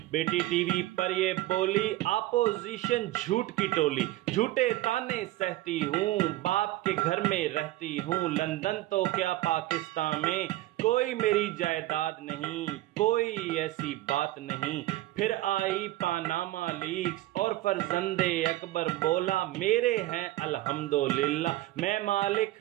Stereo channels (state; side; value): quieter; left; 16.5 dB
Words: بیٹی ٹی وی پر یہ بولی اپوزیشن جھوٹ کی ٹولی، جھوٹے تانے سہتی ہوں، باپ کے گھر میں رہتی ہوں، لندن تو کیا پاکستان میں کوئی میری جائیداد نہیں، کوئی ایسی بات نہیں۔ پھر آئی پاناما لیکس اور فرزند اکبر بولا میرے ہیں الحمدللہ، میں مالک